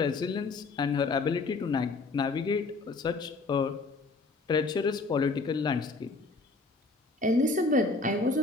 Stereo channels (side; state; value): right; quieter; 3.8 dB